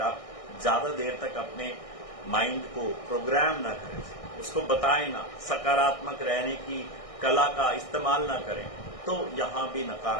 आप ज्यादा देर तक अपने माइंड को प्रोग्राम ना करें, उसको बताएं ना, सकारात्मक रहने की कला का इस्तेमाल ना करें, तो यहां भी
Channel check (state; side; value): late; right; 1.6 ms